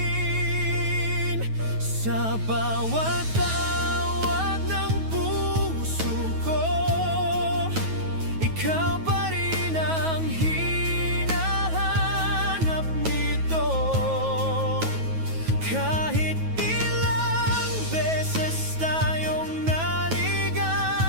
Sa bawat tawag ng puso ko, ikaw pa rin ang hinahanap nito. Kahit ilang beses tayong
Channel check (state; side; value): late; left; 9.3 ms